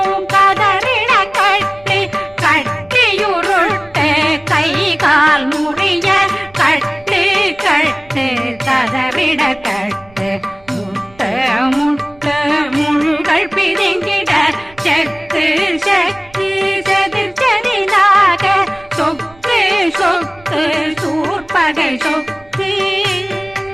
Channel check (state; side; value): noise; right; rumble, 26 dB below the sound